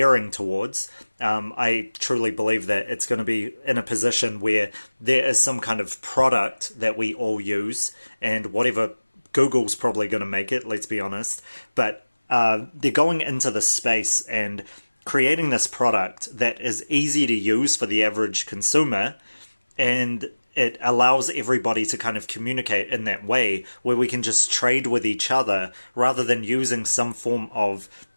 towards. I truly believe that it's going to be in a position where there is some kind of product that we all use, and whatever, Google's probably going to make it, let's be honest, but they're going into the space and creating this product that is easy to use for the average consumer, and it allows everybody to kind of communicate in that way where we can just trade with each other rather than using some form of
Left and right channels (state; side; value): inverted; both; correlation -1.00